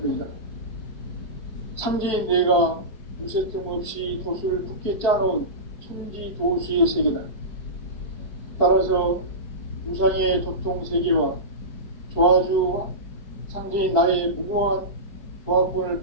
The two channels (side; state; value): right; late; 4.6 ms